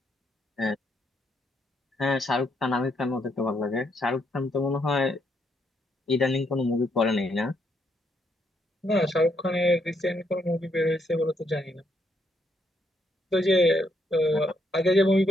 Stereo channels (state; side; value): normal; both; correlation 0.75